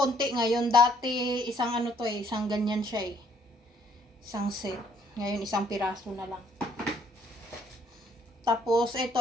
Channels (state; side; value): normal; both; correlation 0.65